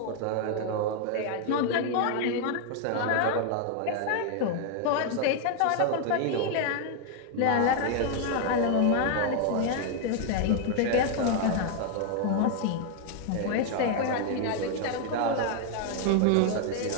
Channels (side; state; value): both; different; correlation 0.00